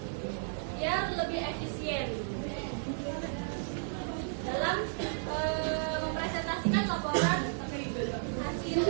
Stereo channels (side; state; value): left; silent; digital silence